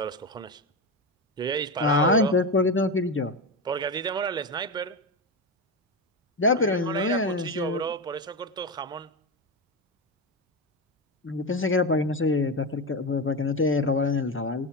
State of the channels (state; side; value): normal; both; correlation 0.16